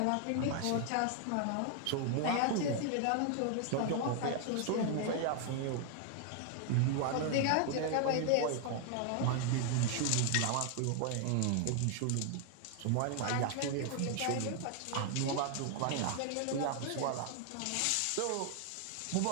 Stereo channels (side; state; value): both; different; correlation 0.00